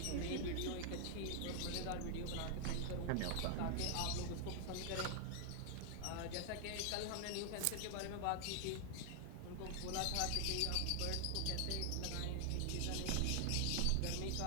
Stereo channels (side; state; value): both; different; correlation 0.00